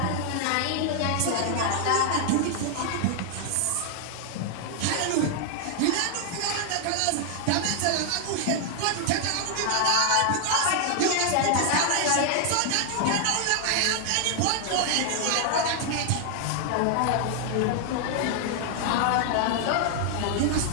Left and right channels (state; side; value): different; both; correlation 0.00